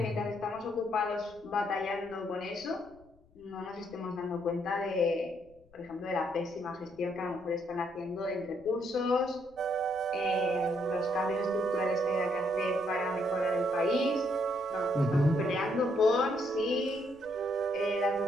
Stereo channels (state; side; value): noise; left; rumble, 28 dB below the sound